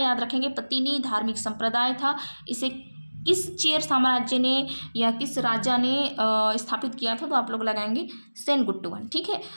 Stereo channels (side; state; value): both; inverted; correlation -1.00